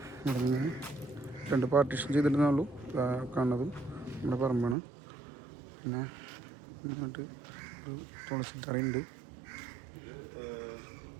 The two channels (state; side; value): drops out; left; at 4.8 s